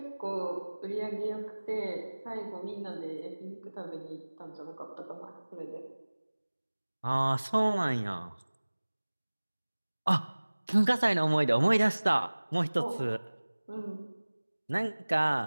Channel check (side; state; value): both; inverted; correlation -1.00